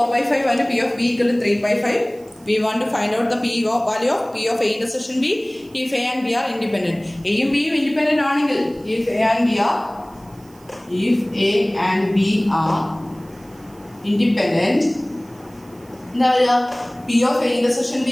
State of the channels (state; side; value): noise; right; hiss, 29 dB below the sound